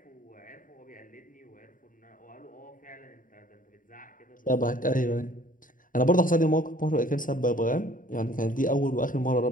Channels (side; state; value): right; late; 0.39 ms